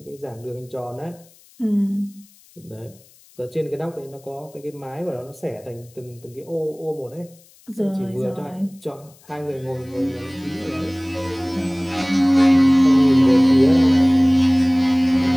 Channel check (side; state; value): left; noise; hiss, 28 dB below the sound